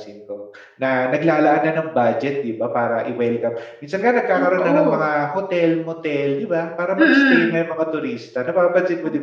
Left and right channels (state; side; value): identical; both; correlation 1.00